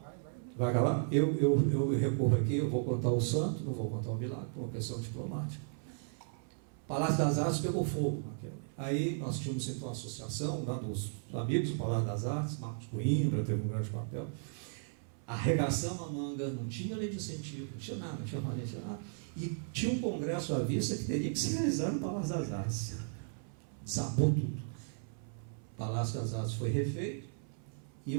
Vai acabar? Eu recorro aqui, eu vou contar o santo, não vou contar o milagre, por uma questão diplomática. Palácio das Artes pegou fogo. Aí nós tínhamos então uma associação lá dos amigos do Palácio das Artes, Marcos Coimbra teve um grande papel. Arregaçamos a manga, não tinha lei de incentivo, não tinha nada, não tinha maneira, não tinha nada. E tinha um congresso à vista que teria que se realizar no Palácio das Artes. Sabou tudo. O Palácio das Artes foi refeito, e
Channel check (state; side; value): silent; left; 54 dB below the other